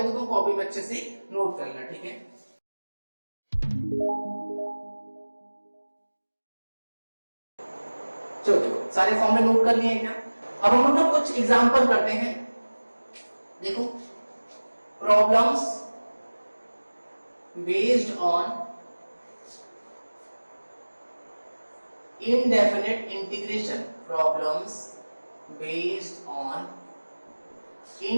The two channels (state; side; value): inverted; both; correlation -1.00